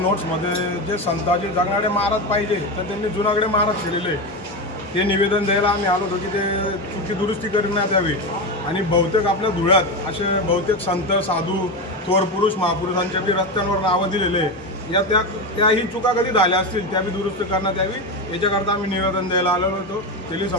जे संताजी जगणारे महाराज पाहिजे तर त्यांनी जुनागडे महाराज केलेले ते निवेदन द्यायला आम्ही आलो होतो की ते चुकी दुरुस्ती करण्यात यावी। आणि बहुतेक आपल्या धुळ्यात असे बहुतेक संत साधू थोर पुरुष महापुरुषांच्या बी रस्त्यांवर नावं दिलेले या त्याही चुका कधी झाल्या असतील त्या बी दुरुस्त करण्यात यावी याच्याकरता आम्ही निवेदन द्यायला आलेलो होतो तेली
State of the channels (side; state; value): both; normal; correlation 0.16